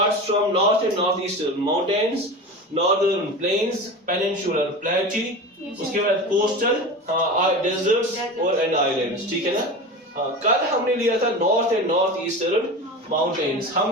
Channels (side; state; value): both; normal; correlation 0.29